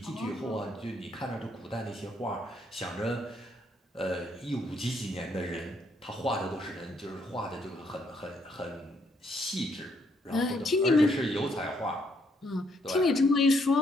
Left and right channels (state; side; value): normal; both; correlation 0.72